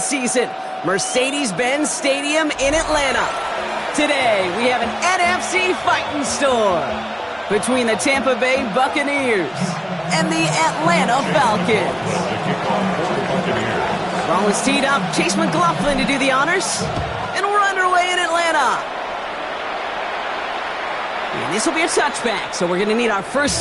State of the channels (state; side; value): identical; both; correlation 1.00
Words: Mercedes-Benz Stadium in Atlanta. Today, we have an NFC fighting storm between the Tampa Bay Buccaneers and the Atlanta Falcons. Ball is teed up, Chase McLaughlin to do the honors, and we're underway in Atlanta. And this will be a touchback, so we're going to need our